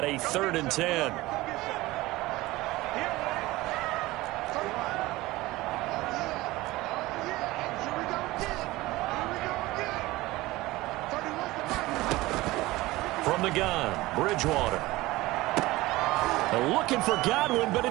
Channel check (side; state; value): left; quieter; 19.1 dB